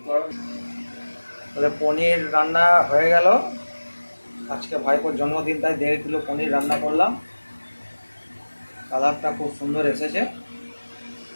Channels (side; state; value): both; inverted; correlation -1.00